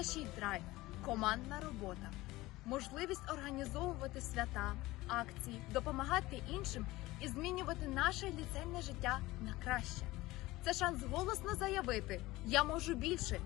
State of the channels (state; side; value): quieter; right; 18.9 dB